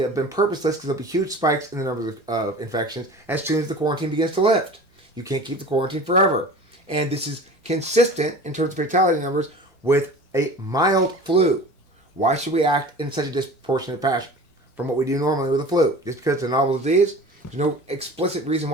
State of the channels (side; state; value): left; late; 1.1 ms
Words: been purposeless because there'll be huge spikes in the numbers of infections as soon as the quarantine begins to lift. You can't keep the quarantine forever. And this is consistent in terms of fatality numbers with a mild flu. Why should we act in such a disproportionate fashion from what we do normally with a flu? Just because it's a novel disease? There's no explicit reason